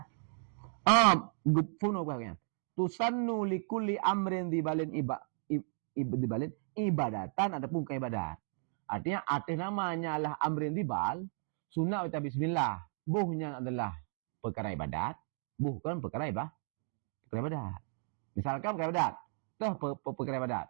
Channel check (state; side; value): silent; left; 55 dB below the other